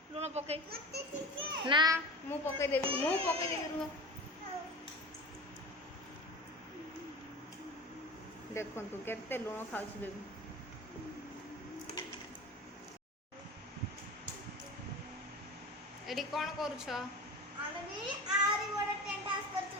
लुण पके ना मु पके देबी रुह देखो तू केते लुण खाउछु बेबी एडी कोन करूछ आमे भी आरी बडा टेंट हाउस करछु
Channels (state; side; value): normal; both; correlation 0.32